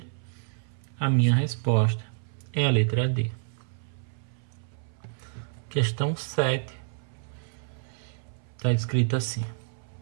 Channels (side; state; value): left; silent; 58 dB below the other